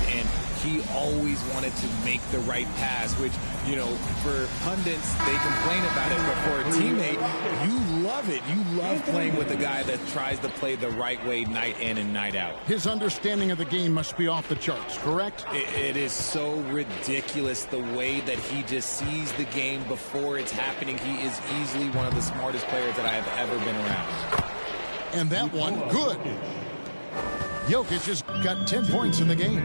And he always wanted to make the right pass, which, you know, for pundits, they complain about it, but for a teammate, you love it. You love playing with a guy that tries to play the right way night in and night out. His understanding of the game must be off the charts, correct? It is so ridiculous the way that he just sees the game before it's happening. He is easily one of the smartest players that I have ever been around. And that one, good. Jokic has got 10 points in the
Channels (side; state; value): both; inverted; correlation -1.00